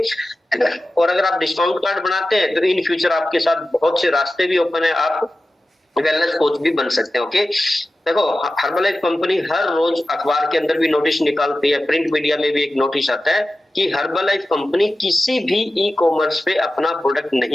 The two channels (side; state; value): both; normal; correlation 0.94